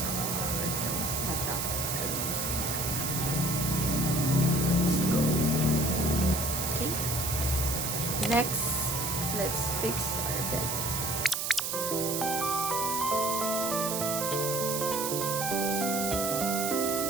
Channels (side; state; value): right; noise; hiss, 1 dB below the sound